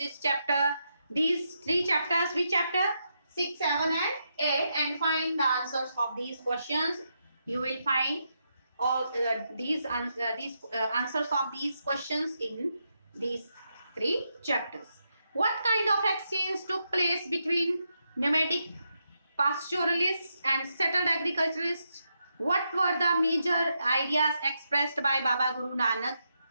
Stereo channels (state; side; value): inverted; both; correlation -0.83